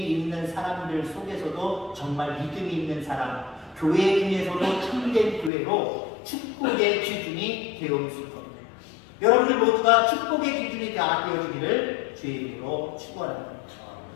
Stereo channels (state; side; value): drops out; right; at 5.5 s